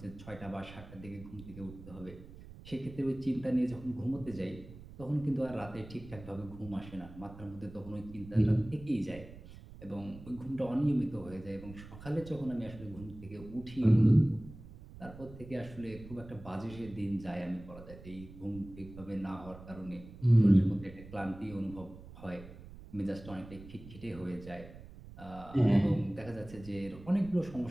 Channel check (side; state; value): right; noise; rumble, 16 dB below the sound